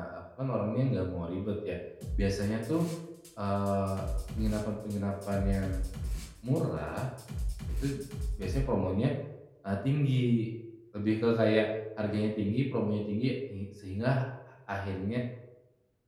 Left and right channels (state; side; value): identical; both; correlation 1.00